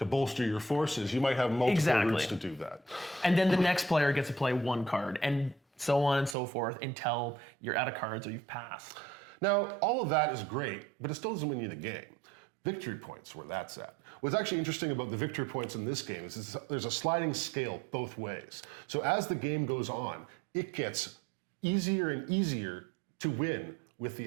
your forces, you might have multiple routes to do that. And then the next player gets to play one card, and so on and so forth until you're out of cards or you've passed. Now, all of that is great, but it still doesn't win you the game. Victory points, where that's at. What's actually interesting about the victory points in this game is there's a sliding scale both ways. So as the game goes on, it gets easier and easier to win with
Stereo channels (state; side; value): drops out; left; at 6.4 s